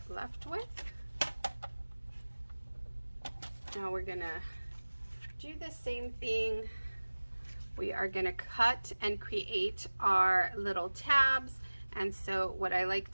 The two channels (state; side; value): inverted; both; correlation -1.00